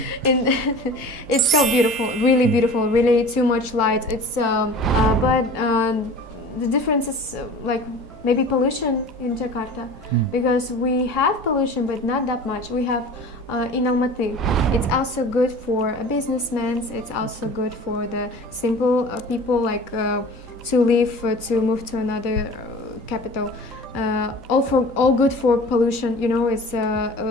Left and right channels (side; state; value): both; normal; correlation 0.40